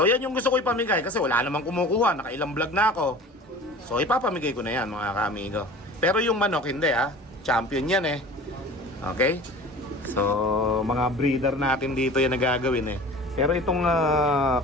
yan yung gusto ko ipamigay kasi wala namang kumukuha, nakailang vlog na ako. So ipapamigay ko na yan mga kaamigo. Pero yung manok hindi champion yan eh. Okay? So mga breeder natin dito yan nagagawin eh. Pero itong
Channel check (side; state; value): both; normal; correlation 0.40